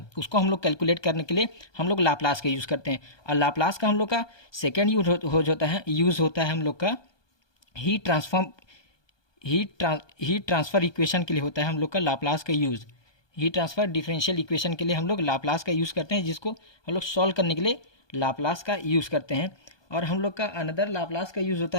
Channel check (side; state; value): right; late; 1.2 ms